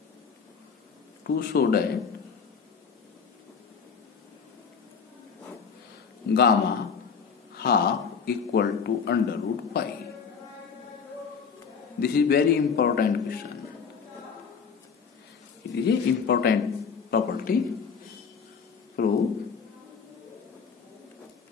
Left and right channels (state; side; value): quieter; right; 6.1 dB